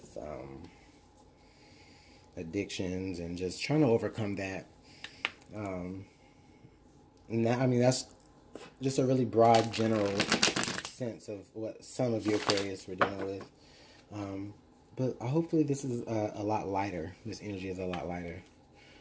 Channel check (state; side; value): identical; both; correlation 1.00